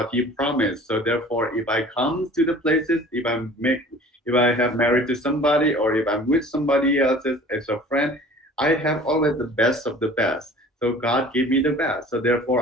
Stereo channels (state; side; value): normal; both; correlation 0.46